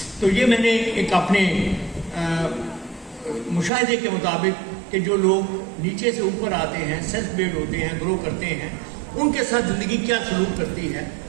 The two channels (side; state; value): left; drops out; at 3.7 s